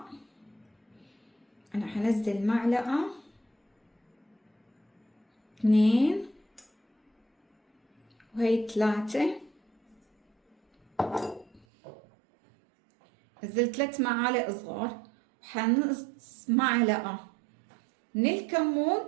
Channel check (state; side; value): drops out; left; at 11.7 s